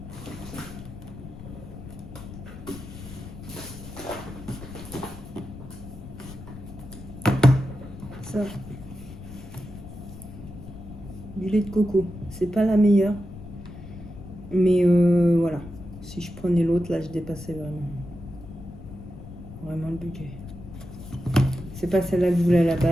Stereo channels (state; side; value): noise; left; rumble, 14 dB below the sound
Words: Ça, du lait de coco, c'est pas la meilleure, mais voilà, si je prenais l'autre là je dépassais vraiment le budget. C'est pas celle-là que je voulais à la